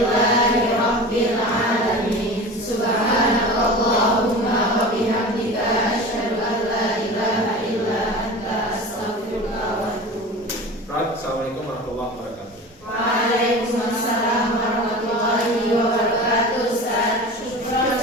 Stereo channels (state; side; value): normal; both; correlation 0.34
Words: alamin. Subhanakallahumma wa bihamdika asyhadu an la ilaha illa anta astaghfiruka wa atubu ilaik. Assalamualaikum warahmatullahi wabarakatuh. Waalaikumsalam.